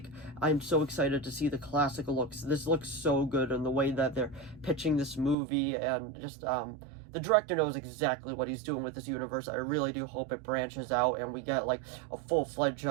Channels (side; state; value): left; drops out; at 5.4 s